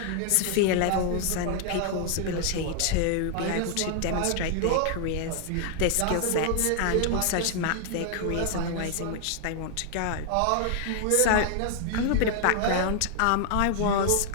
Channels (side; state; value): both; different; correlation 0.00